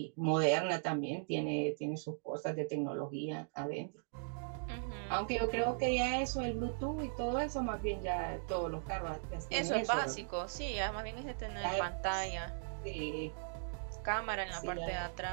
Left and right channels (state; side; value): silent; left; digital silence